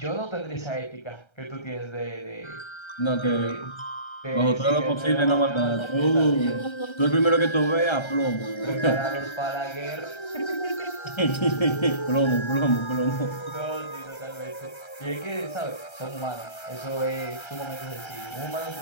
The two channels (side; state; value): right; late; 1.3 ms